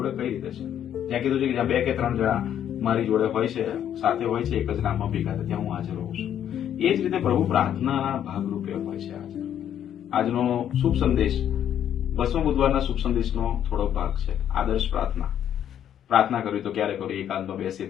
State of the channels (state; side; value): quieter; right; 10.0 dB